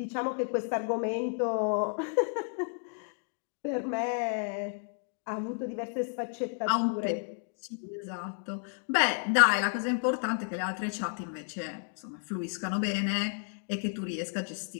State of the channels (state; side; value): silent; right; 56 dB below the other